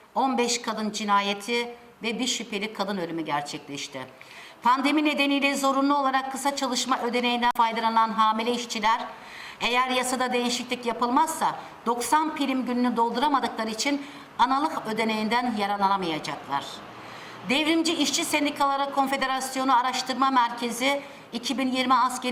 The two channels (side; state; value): both; identical; correlation 1.00